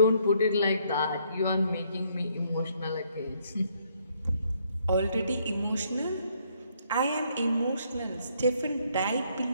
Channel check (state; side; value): inverted; both; correlation -0.69